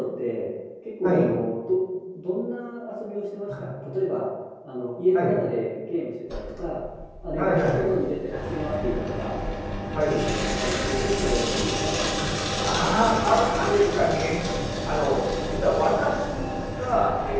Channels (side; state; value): both; identical; correlation 1.00